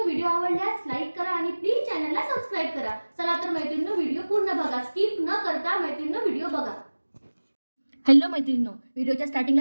व्हिडिओ आवडल्यास लाईक करा आणि प्लीज चॅनलला सबस्क्राइब करा। चला तर मैत्रिणींनो, व्हिडिओ पूर्ण बघा, स्किप न करता मैत्रिणींनो व्हिडिओ बघा। हॅलो मैत्रिणींनो, व्हिडिओच्या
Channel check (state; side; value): inverted; both; correlation -1.00